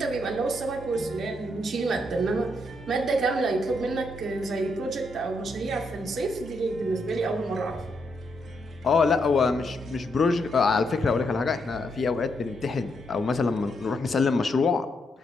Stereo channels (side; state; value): both; normal; correlation 0.79